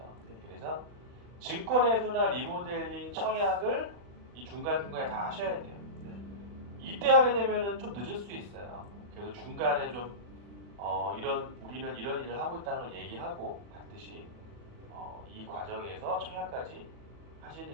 네. 그래서 증권회수나 리모델링, 청약을 이 중간중간에 다 하셔야 돼요. 네. 이때 하게 되면은 좀 늦을 수 있어요. 그래서 중간에 좀 우리는 이런 일을 하고 있다는 걸 얘기하고 반드시 이 과정에서 청약까지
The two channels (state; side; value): late; left; 40 ms